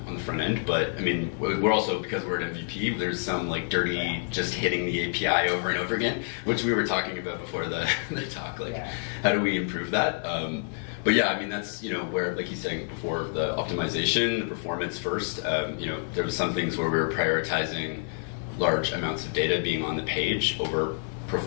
front end. But I mean, we're also, because we're at MVP, there's some like dirty just hitting the API over and over again, which we were talking about before the talk. Like, how do we improve that? But yeah, I mean, that's, you know, where, like he's saying before, the optimization, the performance first. You know, there was some things where we were prioritizing large amounts of data being on the page over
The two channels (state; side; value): silent; right; 59 dB below the other